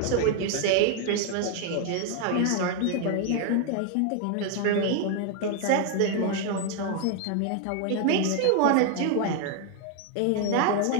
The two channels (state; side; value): different; both; correlation 0.00